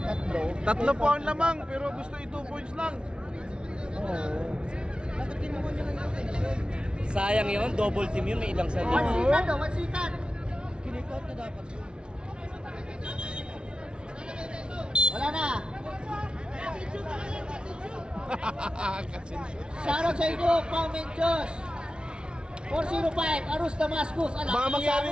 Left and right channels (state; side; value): late; left; 0.056 ms